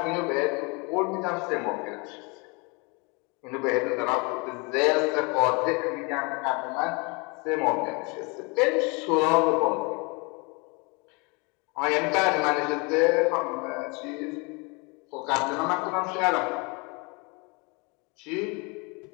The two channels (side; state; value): right; quieter; 29.7 dB